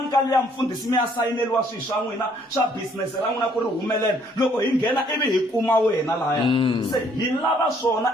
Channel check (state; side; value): normal; both; correlation 0.64